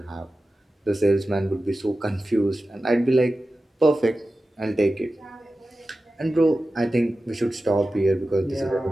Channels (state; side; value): normal; both; correlation 0.94